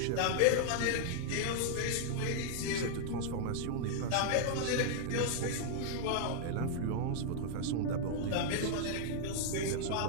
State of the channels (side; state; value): both; different; correlation -0.01